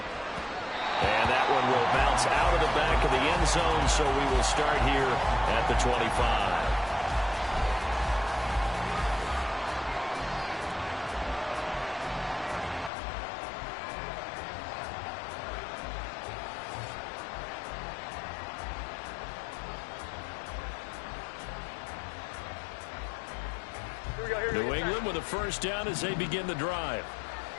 And that one will bounce out of the back of the end zone, so we will start here at the 25. New England with a 1st down as they begin the drive.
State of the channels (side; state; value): right; drops out; at 12.9 s